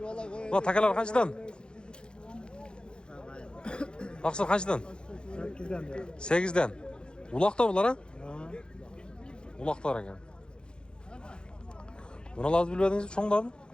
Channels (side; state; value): right; late; 0.050 ms